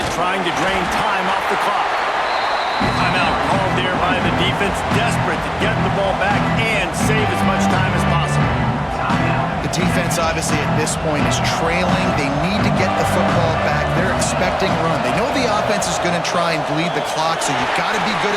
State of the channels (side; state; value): both; identical; correlation 1.00